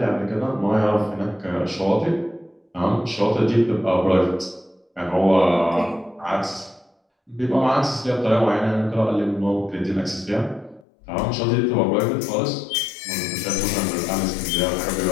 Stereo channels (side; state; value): right; drops out; at 10.9 s